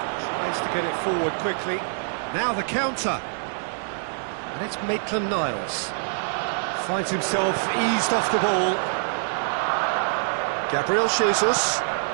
tries to get it forward quickly. Now the counter. And it's Maitland-Niles. Finds himself eased off the ball. Gabriel Jesus.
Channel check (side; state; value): left; silent; 62 dB below the other